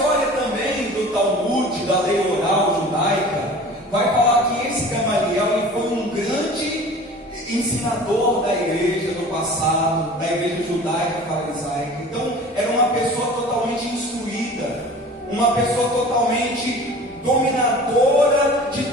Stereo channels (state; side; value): normal; both; correlation 0.41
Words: também do Talmud, da lei oral judaica, vai falar que esse Gamaliel ele foi um grande ensinador da igreja no passado, da igreja judaica farisaica. Então era uma pessoa totalmente instruída, uma pessoa totalmente dominadora de